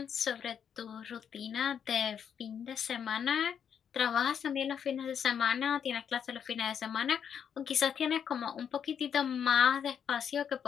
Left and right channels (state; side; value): quieter; right; 7.9 dB